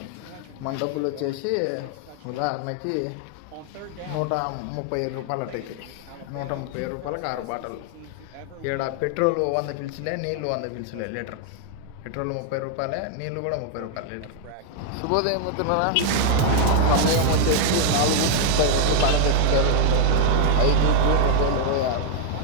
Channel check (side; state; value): both; different; correlation 0.00